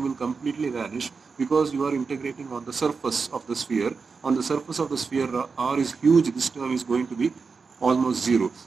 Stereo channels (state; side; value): quieter; left; 4.9 dB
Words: will completely vanish, because you are integrating on the surface of the sphere. On the surface of the sphere, R is huge, this term is going to be almost zero.